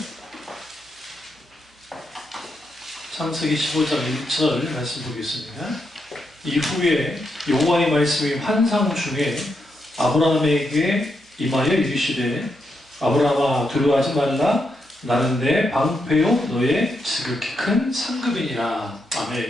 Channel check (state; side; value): normal; both; correlation 0.82